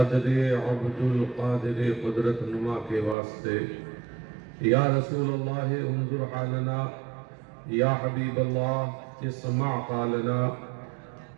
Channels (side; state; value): left; drops out; at 3.2 s